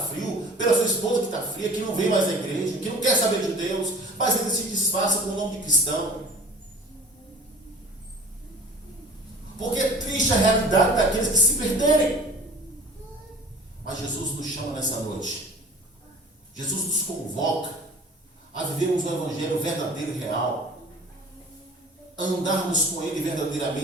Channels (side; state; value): both; normal; correlation 0.44